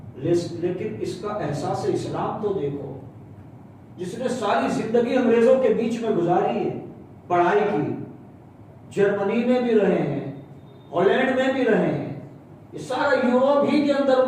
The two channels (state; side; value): identical; both; correlation 1.00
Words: لیکن اس کا احساس اسلام تو دیکھو، جس نے ساری زندگی انگریزوں کے بیچ میں گزاری ہے، پڑھائی کی، جرمنی میں بھی رہے ہیں، ہالینڈ میں بھی رہے ہیں، یہ سارا یوروپ ہی کے اندر